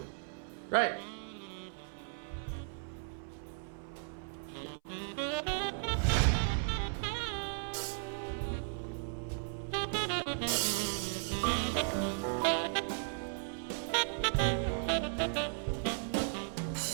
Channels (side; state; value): left; silent; 54 dB below the other